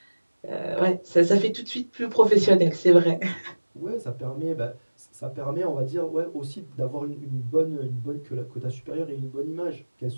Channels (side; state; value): both; inverted; correlation -1.00